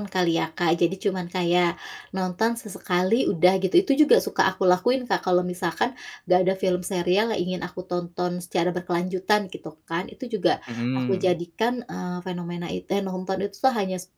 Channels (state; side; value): identical; both; correlation 1.00